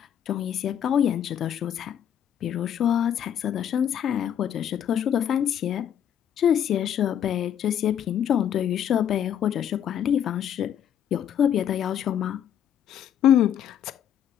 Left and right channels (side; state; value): right; quieter; 9.5 dB